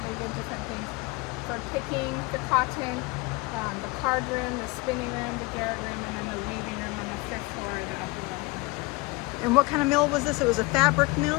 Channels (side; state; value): right; quieter; 24.0 dB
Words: they did different things. For picking the cotton, the card room, the spinning room, the garret room, and then the weaving room on the 5th floor, the upper level. And what kind of mill was this? It was a fabric